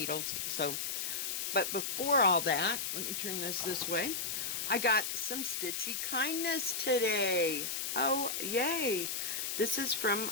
But before all that, let me turn this way. I got some Stitchy kindness today. Oh, yay. This is from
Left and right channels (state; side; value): noise; left; hiss, 2 dB below the sound